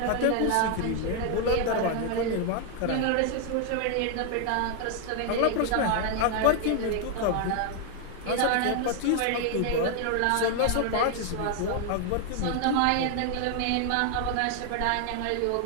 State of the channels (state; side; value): different; both; correlation 0.00